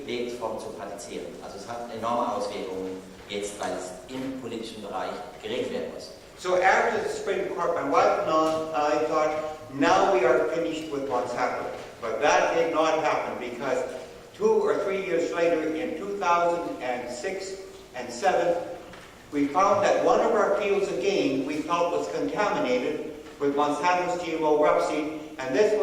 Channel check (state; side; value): identical; both; correlation 1.00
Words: Lebensformen zu praktizieren. Also es hat enorme Auswirkungen jetzt, weil es im politischen Bereich geregelt werden muss. So after the Supreme Court, my wife and I thought, now we are finished with Monsanto. But that did not happen because 2 or 3 years later, in 2006 and 7, we found that one of our fields again we felt was contaminated with Monsanto's GMO rapeseed, and this